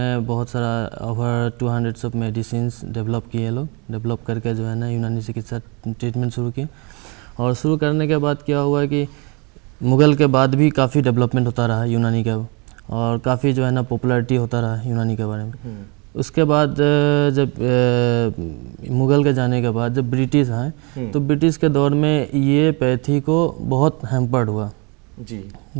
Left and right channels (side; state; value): left; quieter; 30.7 dB